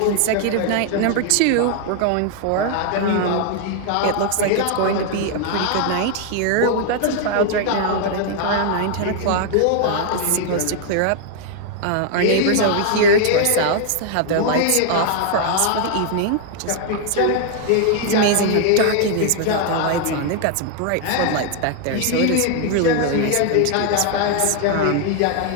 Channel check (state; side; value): different; both; correlation 0.00